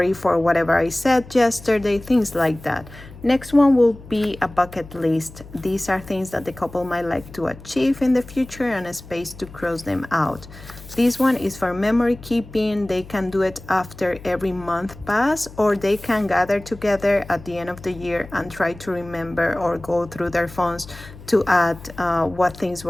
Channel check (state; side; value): noise; left; hum, 17 dB below the sound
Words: for whatever I said yesterday, things like that. Next one will be a bucket list. These are things that the couple might like to achieve in the future and a space to cross them out. This one is for memory keeping. They can do it after every month pass, or they can gather together at the end of the year and try to remember or go through their phones to add what things